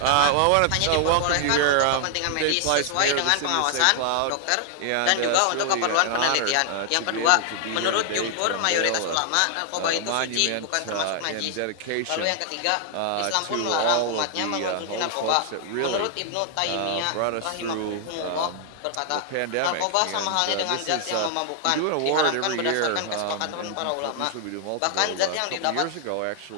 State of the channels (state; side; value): different; both; correlation 0.00